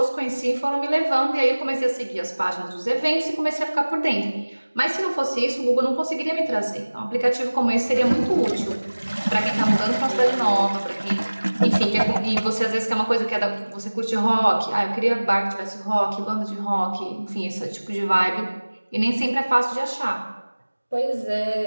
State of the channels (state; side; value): inverted; both; correlation -1.00